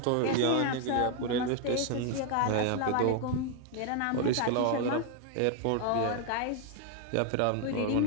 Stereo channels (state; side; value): different; both; correlation 0.00